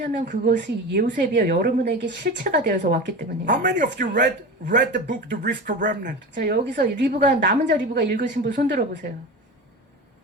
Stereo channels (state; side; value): normal; both; correlation 0.28